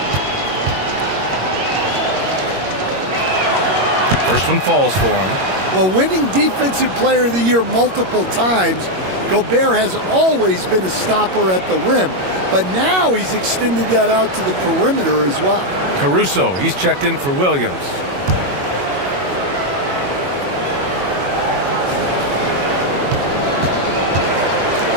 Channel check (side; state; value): left; late; 21 ms